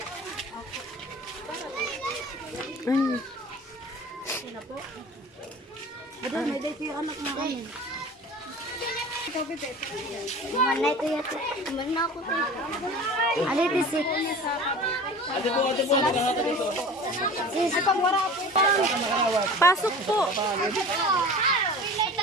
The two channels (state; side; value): normal; both; correlation 0.39